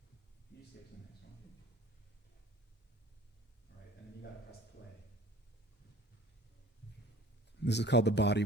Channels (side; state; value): both; normal; correlation 0.48